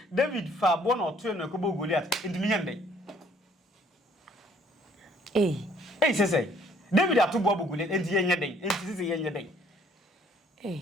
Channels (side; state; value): both; normal; correlation 0.61